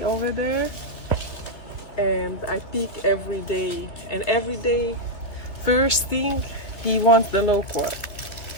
over there, and I pick every day. And every day, first thing, he wants the loquat.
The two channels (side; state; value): right; late; 2.9 ms